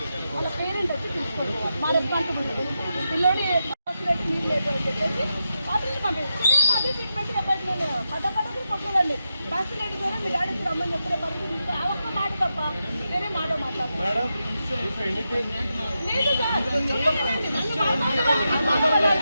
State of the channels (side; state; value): both; inverted; correlation -0.87